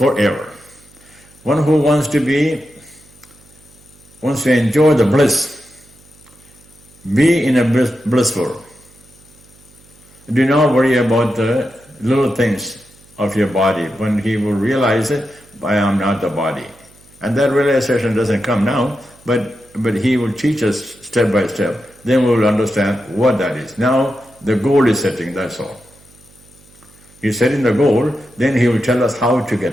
One who wants to enjoy the bliss, be in a blissful. Do not worry about the little things of your body. When he will realize it, I am not the body. And that realization doesn't come now, but he will teach us step by step. Then we will understand what that is. Now the goal is setting, that's all. He's setting the goal, then he will tell us how to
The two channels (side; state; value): right; noise; hum, 27 dB below the sound